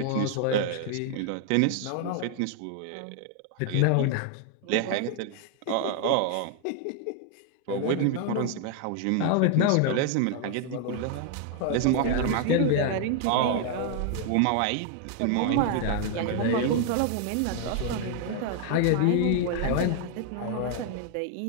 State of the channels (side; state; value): both; different; correlation 0.00